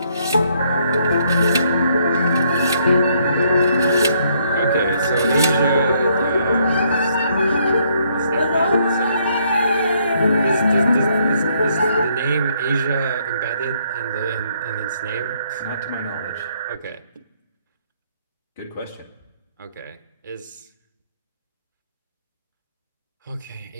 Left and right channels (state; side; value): inverted; both; correlation -0.70